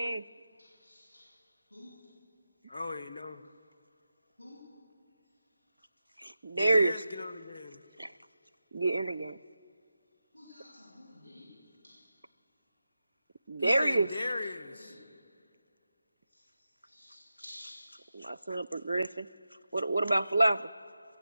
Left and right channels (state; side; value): inverted; both; correlation -0.91